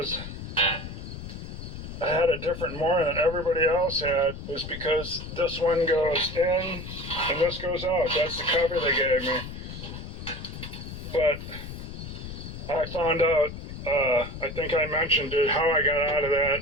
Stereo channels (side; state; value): left; noise; rumble, 9 dB below the sound